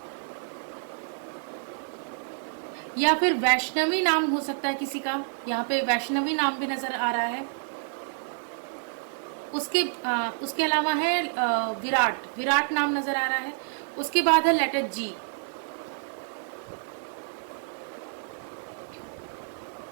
या फिर वैष्णवी नाम हो सकता है किसी का, यहाँ पे वैष्णवी नाम भी नजर आ रहा है। उसके अलावा है विराट, विराट नाम नजर आ रहा है। उसके बाद है लेटर जी।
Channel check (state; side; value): silent; left; digital silence